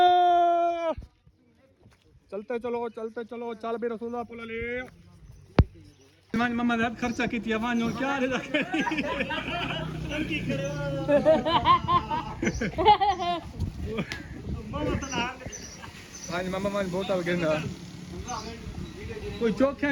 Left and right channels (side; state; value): both; identical; correlation 1.00